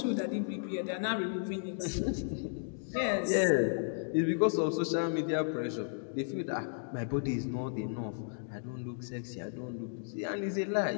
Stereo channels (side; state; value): right; silent; digital silence